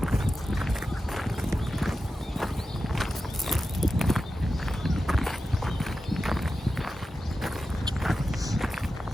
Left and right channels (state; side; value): normal; both; correlation 0.92